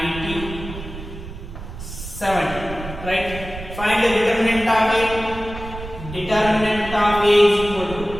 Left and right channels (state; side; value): noise; right; rumble, 11 dB below the sound